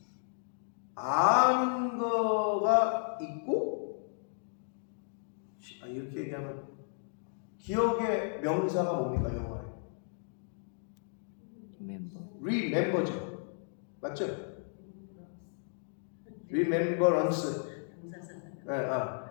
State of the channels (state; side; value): silent; right; digital silence